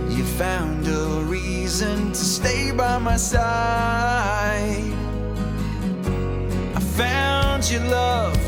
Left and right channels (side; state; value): both; identical; correlation 1.00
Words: You found a reason to stay by my side. I found your love,